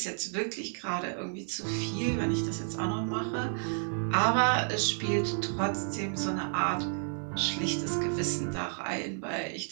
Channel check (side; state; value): left; silent; 57 dB below the other